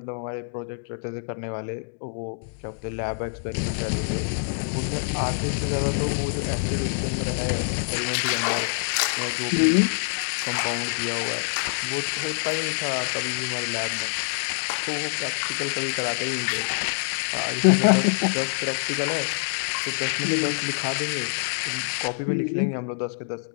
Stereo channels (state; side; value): silent; right; digital silence